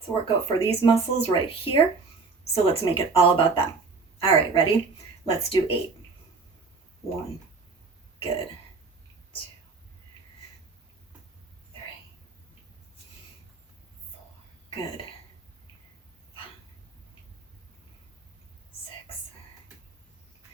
a workout for these muscles right here. So let's make it all about them. All right, ready? Let's do 8. 1, good. 2, 3, 4, good. 5, 6,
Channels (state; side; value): quieter; left; 4.4 dB